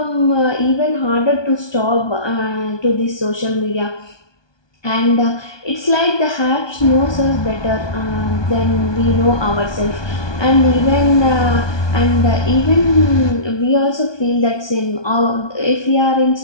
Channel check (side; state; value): right; late; 1.2 ms